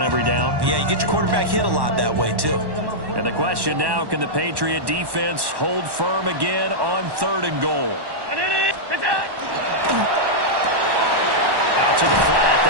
every down? Yeah, you get your quarterback hit a lot that way, too. And the question now, can the Patriot defense hold firm again on 3rd and goal? Out to the flat.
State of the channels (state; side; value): late; left; 1.1 ms